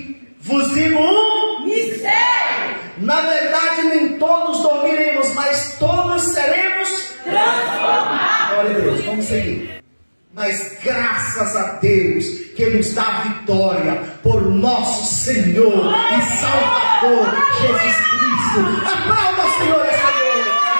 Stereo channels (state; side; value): inverted; both; correlation -1.00